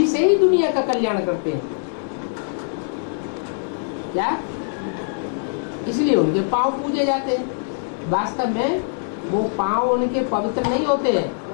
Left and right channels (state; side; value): silent; right; digital silence